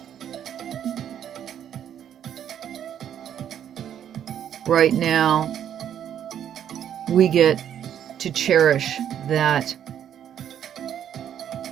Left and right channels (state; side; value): quieter; left; 9.7 dB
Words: right now, we get to cherish that